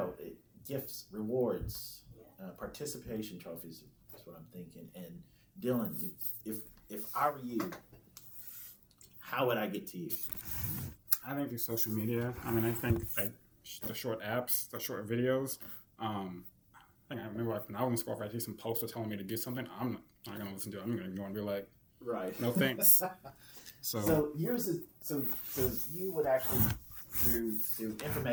Gifts, rewards, participation trophies. That's what I'm thinking. And Dylan, if I were you, how would I get to you? I think through social media. I mean, I think like the short apps, the short videos. I think I remember like when I was in school, if I see some poster telling me to do something, I'm not gonna listen to it. I'm gonna go and be like, Right. no thanks. So So here's so you would actually through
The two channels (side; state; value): both; identical; correlation 1.00